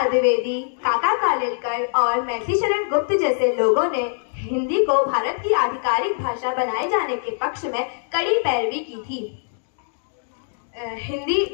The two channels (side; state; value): right; silent; digital silence